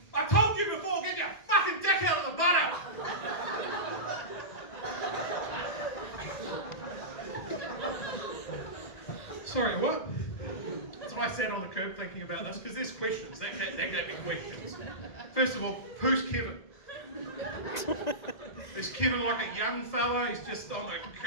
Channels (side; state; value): right; late; 1.8 ms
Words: I told you before, get your fucking dick out of the butter!" Sorry, what? So I sat on the curb thinking about this because there's questions. That gave me questions. First of all, who's Kevin? Is Kevin like a young fella? He's just on the